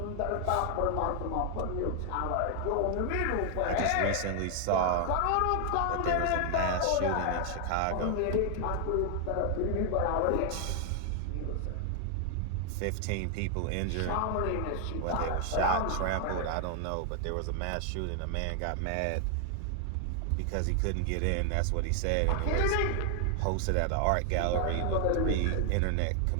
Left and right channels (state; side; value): different; both; correlation 0.00